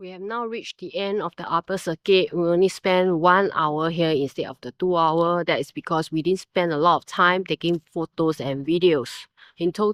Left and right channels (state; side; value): identical; both; correlation 1.00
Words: have now reached the end of the upper circuit. We only spent 1 hour here instead of the 2 hour. That is because we didn't spend a lot of time taking photos and videos. In